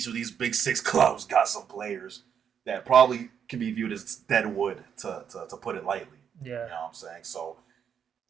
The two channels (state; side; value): quieter; left; 7.8 dB